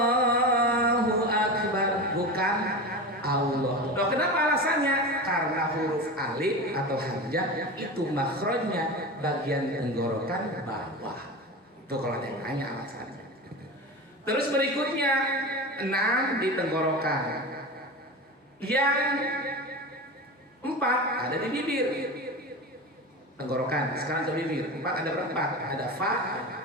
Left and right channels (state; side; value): normal; both; correlation 0.26